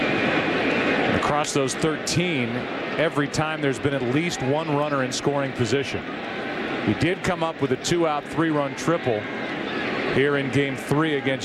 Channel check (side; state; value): both; identical; correlation 1.00